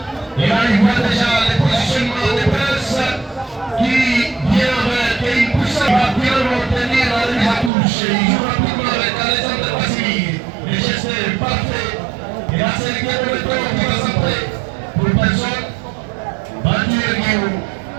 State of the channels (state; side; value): drops out; left; at 7.7 s